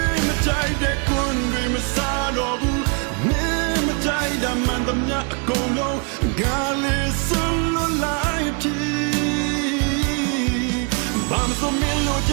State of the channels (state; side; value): quieter; left; 36.9 dB